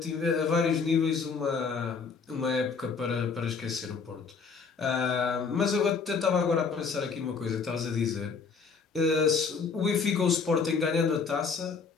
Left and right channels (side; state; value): right; quieter; 5.3 dB